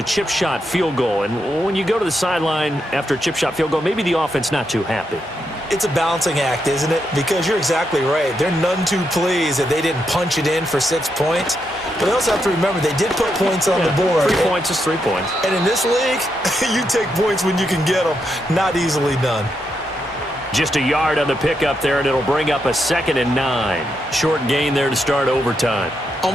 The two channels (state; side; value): normal; both; correlation 0.82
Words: chip shot field goal. And when you go to the sideline after a chip shot field goal, maybe the offense not too happy. It's a balancing act, isn't it? Because you're exactly right. They're none too pleased that they didn't punch it in for 6 points. But they also have to remember they did put points on the board. 3 points is 3 points. And in this league, you take points when you can get them. Not easily done. Just a yard on the pickup there, and it'll bring up a 2nd and 9. Short gain there to start overtime.